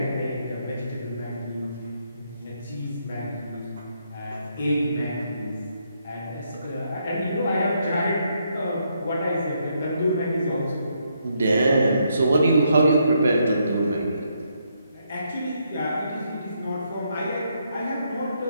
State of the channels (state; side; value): inverted; both; correlation -0.76